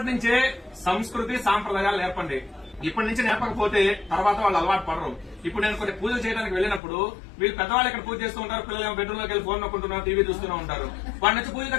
నుంచే సంస్కృతి సాంప్రదాయాలు నేర్పండి. ఇప్పటి నుంచి నేర్పకపోతే తర్వాత వాళ్ళు అలవాటు పడరు. ఇప్పుడు నేను కొన్ని పూజలు చేయడానికి వెళ్ళినప్పుడు వీళ్ళు పెద్దవాళ్ళు ఇక్కడ పూజ చేస్తూ ఉంటారు, పిల్లలు బెడ్రూమ్ లోకి వెళ్ళి ఫోన్ నొక్కుంటున్నారు, టీవీ చూస్తూనే ఉంటారు. వాడి నుంచి పూజ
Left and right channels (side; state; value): right; drops out; at 6.8 s